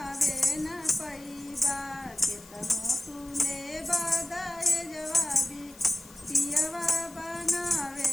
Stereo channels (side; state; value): left; noise; hiss, 21 dB below the sound